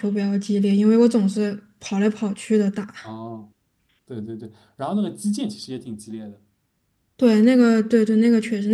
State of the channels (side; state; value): both; identical; correlation 1.00